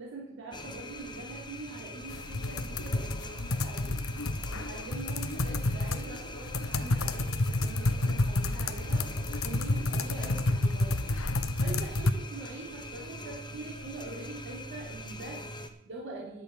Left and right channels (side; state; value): both; normal; correlation 0.73